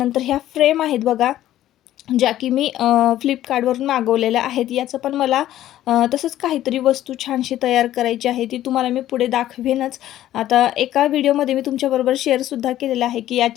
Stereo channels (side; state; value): right; quieter; 13.2 dB